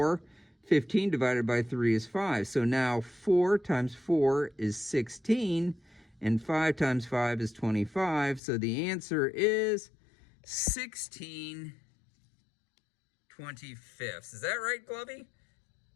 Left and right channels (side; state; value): right; drops out; at 8.4 s